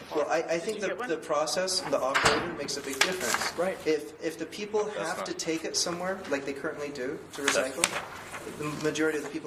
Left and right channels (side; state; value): both; identical; correlation 1.00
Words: Well, I think the process, the operator makes a big difference. Right. If the people have to take it somewhere, like they currently do, to recycle, the majority of the